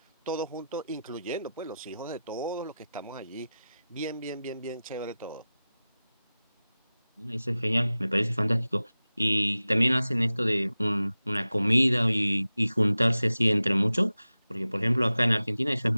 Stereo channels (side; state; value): both; inverted; correlation -0.94